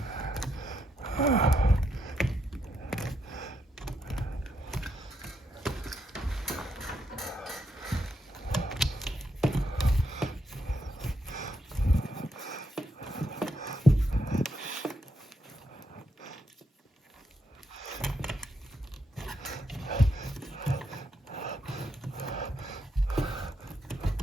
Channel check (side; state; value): both; normal; correlation 0.80